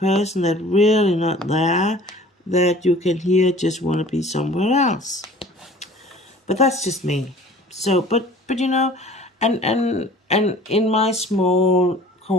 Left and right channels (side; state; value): both; normal; correlation 0.47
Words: that really not there that you can hear just want to be somewhere else. But that's just me. So, but you know, and in my small